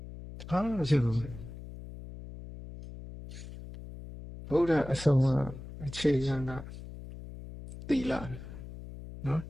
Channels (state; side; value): noise; left; hum, 13 dB below the sound